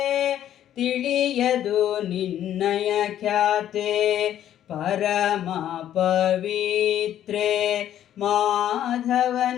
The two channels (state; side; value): quieter; right; 11.3 dB